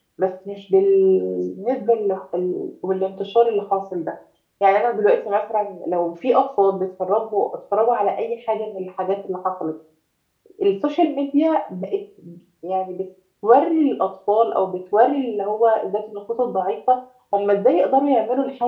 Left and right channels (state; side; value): identical; both; correlation 1.00